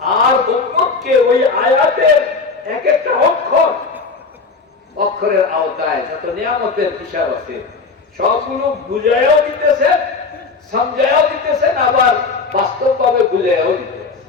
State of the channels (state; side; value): quieter; right; 4.4 dB